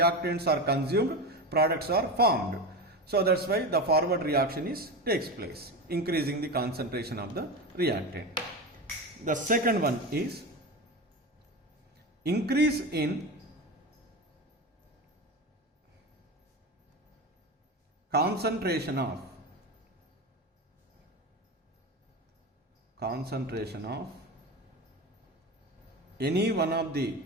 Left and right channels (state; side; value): normal; both; correlation 0.22